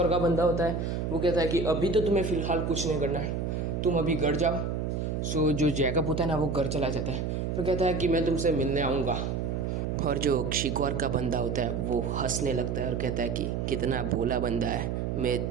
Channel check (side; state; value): right; noise; hum, 1 dB below the sound